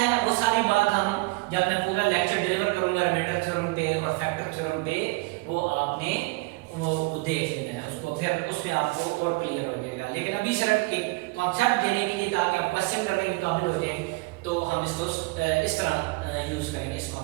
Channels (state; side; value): quieter; left; 25.4 dB